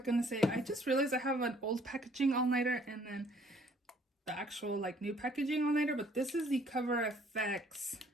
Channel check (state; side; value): normal; both; correlation 0.60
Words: gonna say, I just realized I have an old packaging all-nighter and then the actual like new packaging all-nighter, but this is the Cover FX